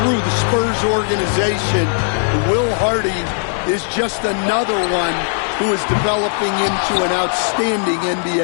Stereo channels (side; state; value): right; silent; digital silence